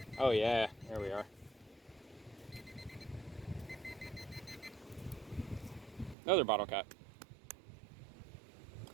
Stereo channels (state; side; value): drops out; left; at 6.2 s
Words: Oh yeah, there we are. Another bottle cap.